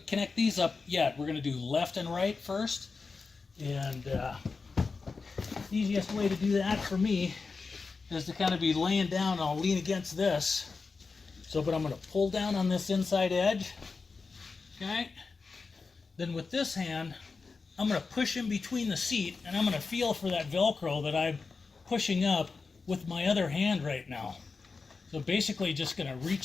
connect these up yet. We're going to do left and right first. And the easiest way to do that for me is to kind of be laying down and I'll lean against this. So, but I'm going to pull down on this inside edge. Okay. Then with this hand, I'm going to push in between the seat and I'm going to feel for that Velcro that I'm pushing up with my other hand right now. So basically just going to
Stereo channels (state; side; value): quieter; right; 4.5 dB